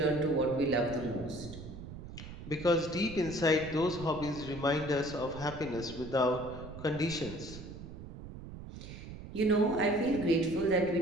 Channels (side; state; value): right; noise; rumble, 12 dB below the sound